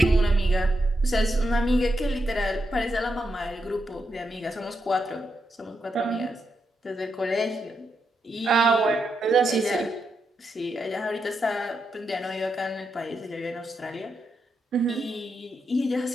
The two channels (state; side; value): normal; both; correlation 0.84